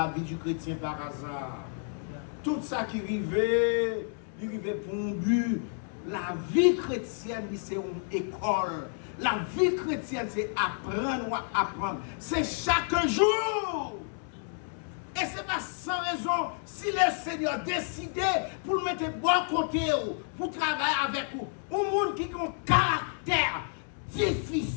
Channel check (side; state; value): right; silent; 58 dB below the other